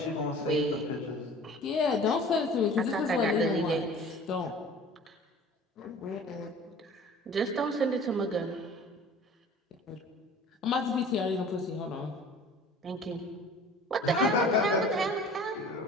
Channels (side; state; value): both; normal; correlation 0.45